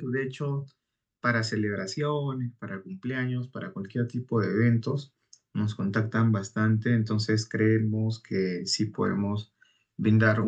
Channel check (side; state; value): both; identical; correlation 1.00